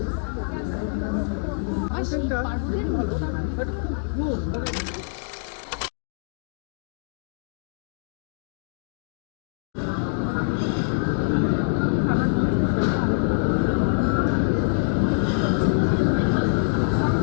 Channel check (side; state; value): right; silent; digital silence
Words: কন্টেন্টটা খুবই ভালো বাট খুব